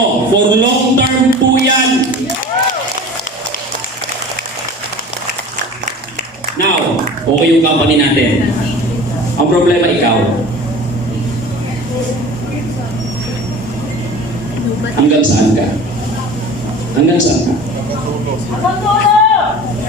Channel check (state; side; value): normal; both; correlation 0.39